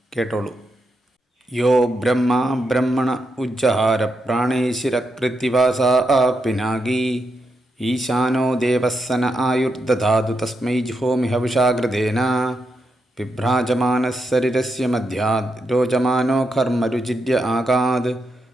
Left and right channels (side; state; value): both; normal; correlation 0.84